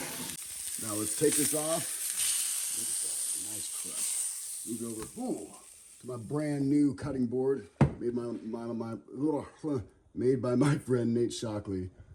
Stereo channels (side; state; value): both; identical; correlation 1.00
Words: Now let's take this off. Look at that, nice crush. Move over to my brand new cutting board made by my friend Nate Shockley.